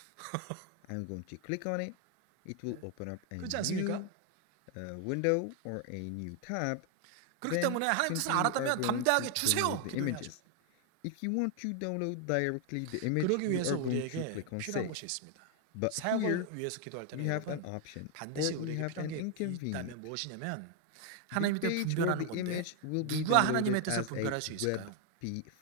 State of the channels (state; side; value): different; both; correlation 0.00